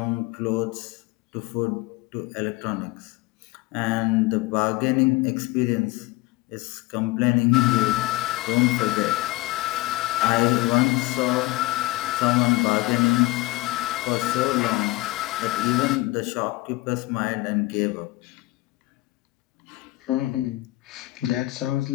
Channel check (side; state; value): right; quieter; 20.3 dB